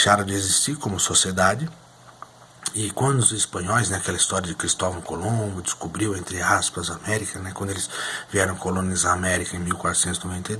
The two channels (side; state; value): both; identical; correlation 1.00